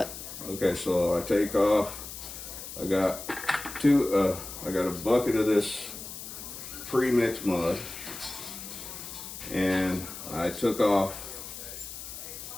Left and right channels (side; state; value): left; noise; hiss, 10 dB below the sound